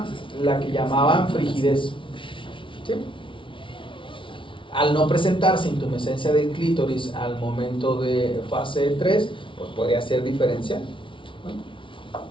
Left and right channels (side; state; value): right; late; 0.25 ms